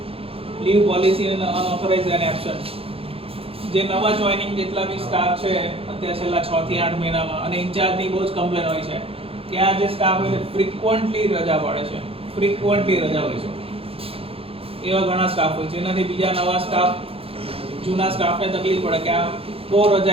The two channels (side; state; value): left; late; 0.27 ms